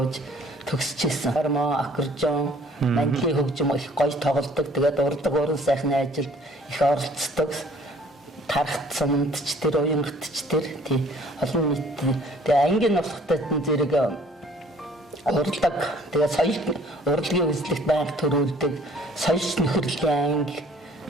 төгсчихсэн. Гармо, аккордеон, мандлын хөгжим их гоё тоглодог. Тэгээд урдаг уран сайхны ажилд их оролцдог. Тарахт суманд ч тэр Уянгат ч тэр тий олон нийт тэгээд ангийн болохтой зэрэг уралдаг. Тэгээд соёл урлагийн үзлэгт байнга төрүүлдэг. Соёлч нөхөрлөлийн анги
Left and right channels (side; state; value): both; normal; correlation 0.56